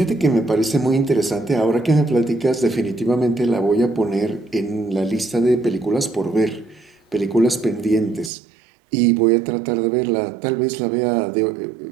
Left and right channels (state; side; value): drops out; left; at 8.3 s